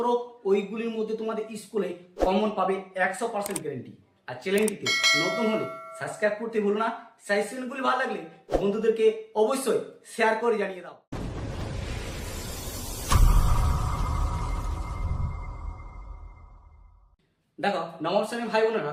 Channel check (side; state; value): both; identical; correlation 1.00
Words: ওইগুলির মধ্যে তোমাদের স্কুলে কমন পাবে 100% গ্যারেন্টি। আর চ্যানেলটিতে নতুন হলে সাবস্ক্রাইব করতে ভুলো না। সাজেশনগুলি ভালো লাগলে বন্ধুদেরকে অবশ্যই শেয়ার করে জানিয়ে দাও। দেখো নবম শ্রেণীর ভাই বোনেরা,